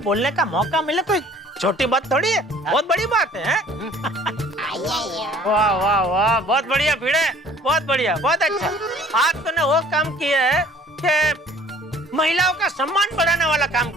बोलने का मौका मिले कोई छोटी बात थोड़ी है, बहुत बड़ी बात है। वाह वाह वाह, बहुत बढ़िया भिड़े, बहुत बढ़िया, बहुत अच्छा। आज तूने वो काम किया है कि महिलाओं का सम्मान बढ़ाने वाला काम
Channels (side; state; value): both; normal; correlation 0.53